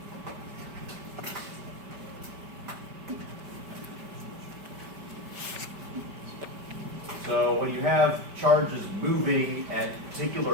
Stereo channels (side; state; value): left; late; 5.1 ms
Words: So when you have charges moving at